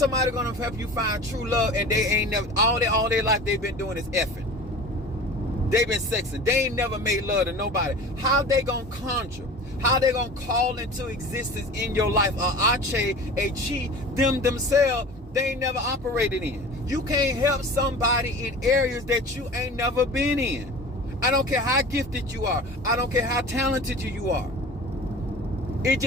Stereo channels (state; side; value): normal; both; correlation 0.38